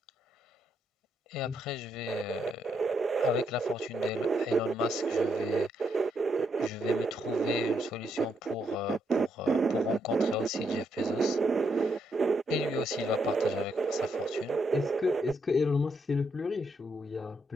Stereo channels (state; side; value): normal; both; correlation 0.77